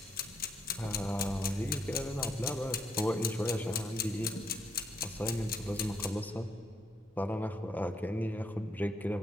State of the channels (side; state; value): both; normal; correlation 0.75